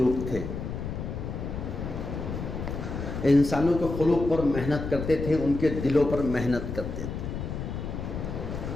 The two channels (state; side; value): noise; left; rumble, 5 dB below the sound